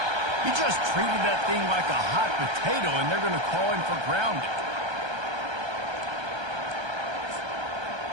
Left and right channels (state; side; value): late; left; 1.3 ms